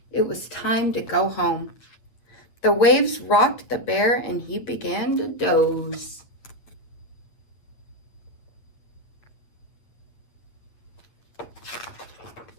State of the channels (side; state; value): right; late; 8.8 ms